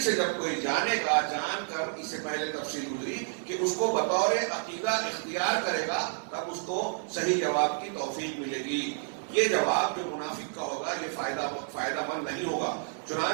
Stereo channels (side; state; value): left; silent; 58 dB below the other